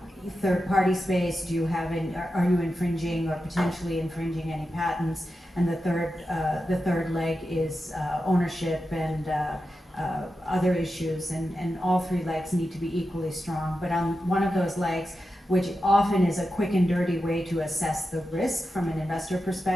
third-party space. Are you infringing or potentially infringing any patents? And the third leg is ownership and other issues, and all three legs need to be equally strong. But on one of those legs, which often is a quick and dirty way to assess the risk from an investor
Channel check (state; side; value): normal; both; correlation 0.90